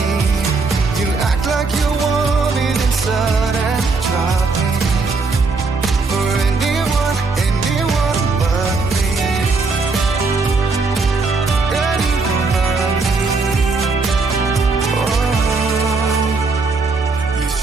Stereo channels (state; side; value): quieter; left; 4.1 dB